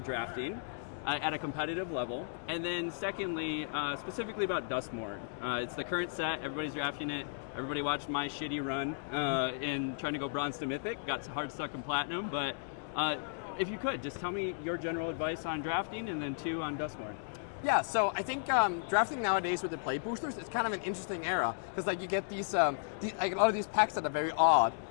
at a competitive level? And then secondly, specifically about Duskmourn. It's the current set. Everybody's drafting it. Everybody watched my shitty run in trying to go bronze to mythic. Got hard stuck in platinum. But if you could, just tell me your general advice on drafting, and then two on Duskmourn. Yeah, so I think drafting nowadays with the play boosters is kind of an interesting era, because like you get these like a lot of these packs that are very odd.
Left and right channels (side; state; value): right; silent; digital silence